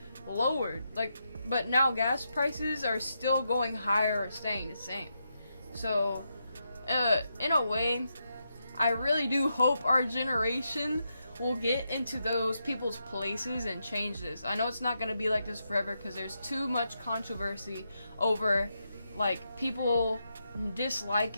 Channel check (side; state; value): both; inverted; correlation -0.84